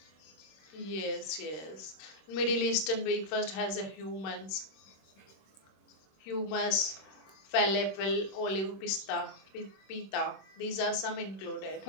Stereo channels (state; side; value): late; right; 26 ms